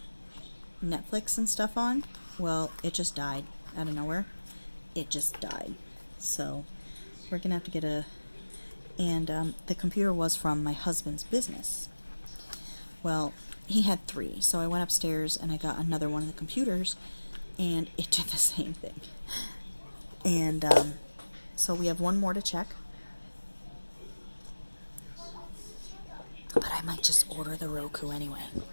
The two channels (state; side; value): inverted; both; correlation -1.00